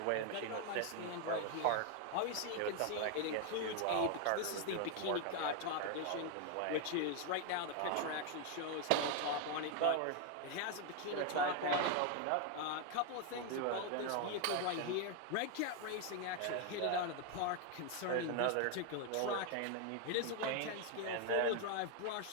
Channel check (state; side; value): different; both; correlation 0.01